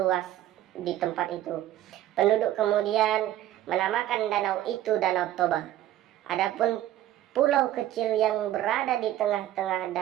di tempat itu. Penduduk kemudian menamakan danau itu Danau Toba. Adapun pulau kecil yang berada di tengah-tengah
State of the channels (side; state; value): left; quieter; 13.2 dB